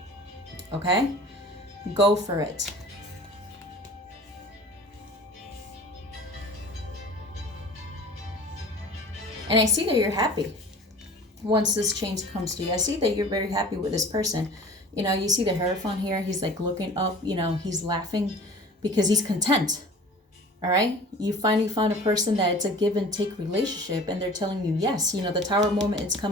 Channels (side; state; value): both; normal; correlation 0.43